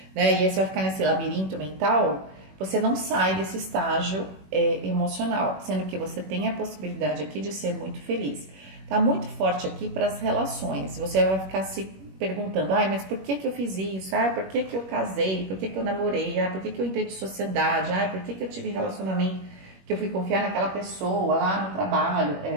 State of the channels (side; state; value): left; late; 21 ms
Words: né? E aí você vai ficar nesse labirinto mental, você não sai desse estágio emocional, sendo que você tem a possibilidade aqui de ser muito feliz. Tá muito forte aqui para as relações, você vai ficar se perguntando, mas por que eu fiz isso? Por que eu casei? Por que eu namorei? Por que eu entrei de sociedade? Por que eu tive relacionamento? Que eu fui confiar naquela pessoa lá no trabalho?